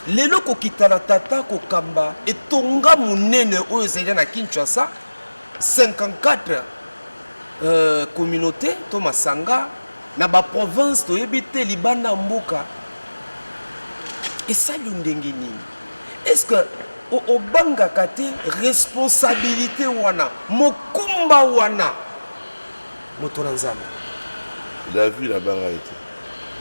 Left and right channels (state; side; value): inverted; both; correlation -1.00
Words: lelo kokitana tata kokamba etonga munene oyo ezali na Kinshasa 54 communauté to masanga na ba province toyebi te libanda mboka. Et ça, est-ce que au banga kate responsabilité wana mokumba wana motola nzambe la vie la banga été